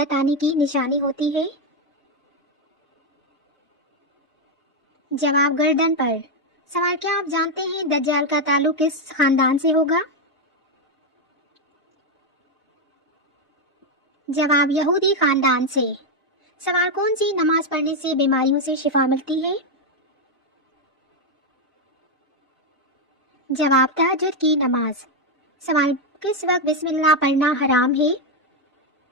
आने की निशानी होती है? जवाब गर्दन पर। सवाल क्या आप जानते हैं दज्जाल का ताल्लुक किस खानदान से होगा? जवाब यहूदी खानदान से। सवाल कौन सी नमाज पढ़ने से बीमारियों से शिफा मिलती है? जवाब तहज्जुद की नमाज। सवाल किस वक्त बिस्मिल्लाह पढ़ना हराम है?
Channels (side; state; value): both; normal; correlation 0.04